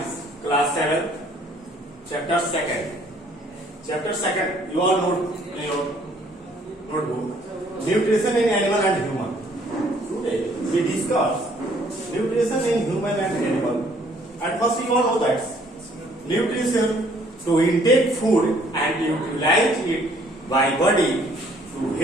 class 7, chapter 2nd. Chapter 2nd, you all know in your notebook, nutrition in animal and human. Today we discuss nutrition in human and animal. At first you all know that nutrition to intake food and utilize it by body to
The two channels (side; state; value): both; normal; correlation 0.61